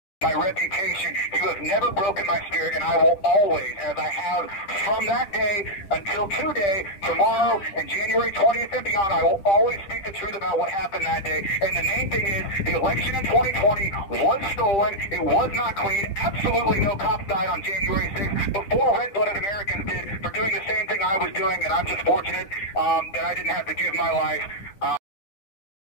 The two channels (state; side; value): late; right; 9.9 ms